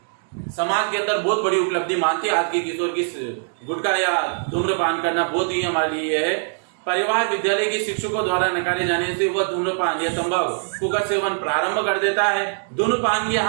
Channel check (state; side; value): silent; left; digital silence